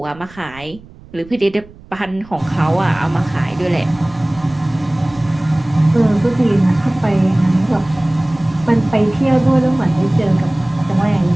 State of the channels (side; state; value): right; noise; rumble, 22 dB below the sound